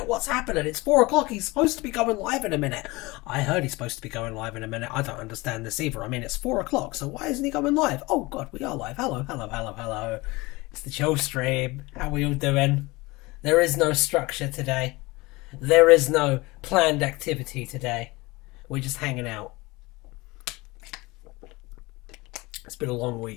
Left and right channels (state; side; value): quieter; right; 22.7 dB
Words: What's happening? It's 4 o'clock. He's supposed to be going live in a minute. I heard he's supposed to be going live in a minute. I don't understand this either. I mean, it's 4 o'clock, so why isn't he going live? Oh, God, we are live. Hello, hello, hello, hello. It's the chill stream. How are we all doing? There is no structure today. There is no planned activity today. We're just hanging out. It's been a long